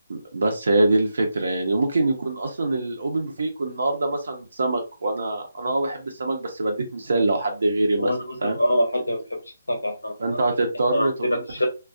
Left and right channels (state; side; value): inverted; both; correlation -0.87